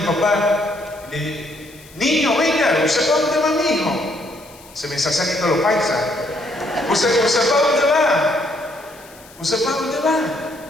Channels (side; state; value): left; noise; hiss, 23 dB below the sound